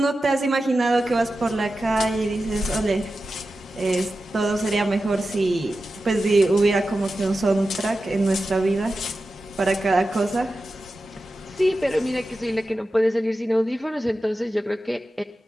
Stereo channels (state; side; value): normal; both; correlation 0.92